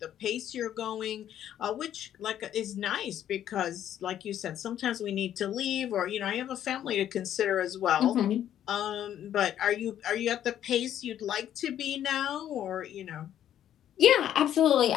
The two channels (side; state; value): right; quieter; 10.8 dB